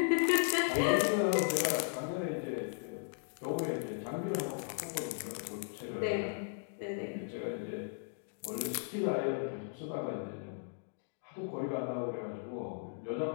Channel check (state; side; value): silent; right; digital silence